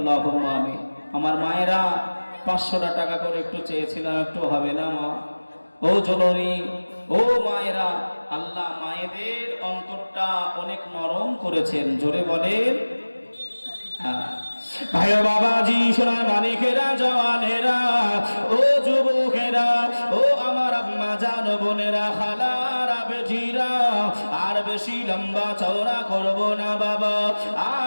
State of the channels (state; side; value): inverted; both; correlation -1.00